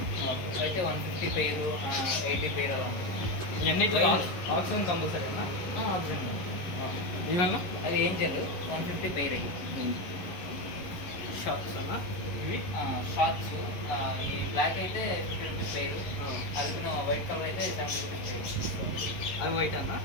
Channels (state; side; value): late; right; 11 ms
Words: అయితే 150 పేరు, 80 పేరు అలా ఉంటుంది. ఇవన్నీ ఆక్సిజన్ కంపల్సరీ అన్నా? ఆక్సిజన్. ఇవన్నా అది ఏంజల్ 150 పేరు. అయ్యి షార్ట్స్ అన్నా? ఇవి షార్ట్స్. ఈ బ్లాక్ అయితే 50 రూపీస్ పేరు. అల్పినో వైట్ కలర్ అయితే 70 రూపీస్ పేరు. అవి వైట్ అన్న?